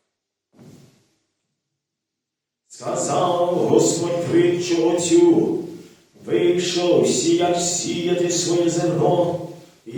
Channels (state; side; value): identical; both; correlation 1.00